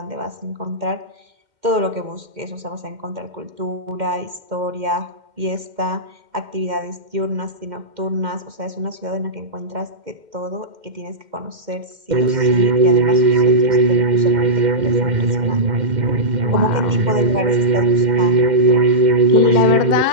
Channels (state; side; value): late; left; 2.1 ms